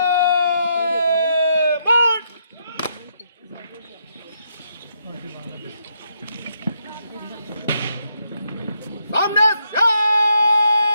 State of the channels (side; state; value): both; inverted; correlation -0.77